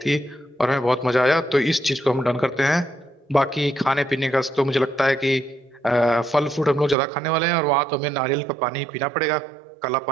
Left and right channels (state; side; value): drops out; left; at 7.0 s